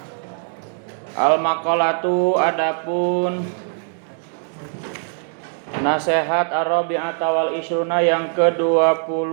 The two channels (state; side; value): silent; left; 58 dB below the other